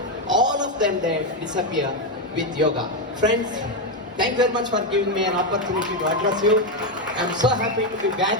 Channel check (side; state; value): both; normal; correlation 0.06